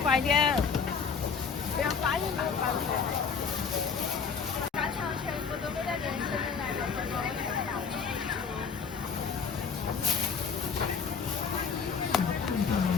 快点。不要发音都发不出来。干肠全部都给他连起来了，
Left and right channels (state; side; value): quieter; right; 5.9 dB